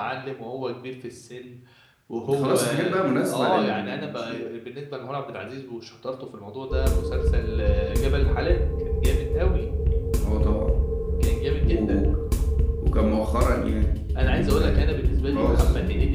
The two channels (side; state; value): both; identical; correlation 1.00